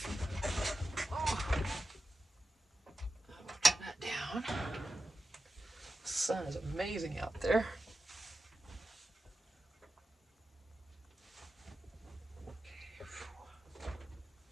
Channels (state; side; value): normal; both; correlation 0.92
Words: Oh. Turn that down. The sun is amazing out there.